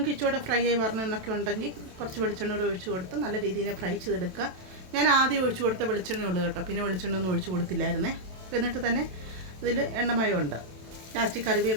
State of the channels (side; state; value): left; late; 27 ms